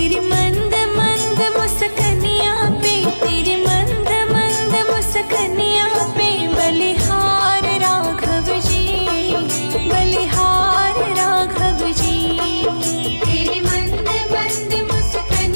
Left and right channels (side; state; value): both; inverted; correlation -1.00